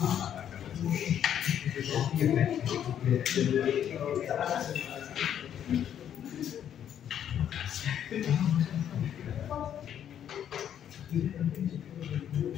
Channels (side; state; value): right; quieter; 9.7 dB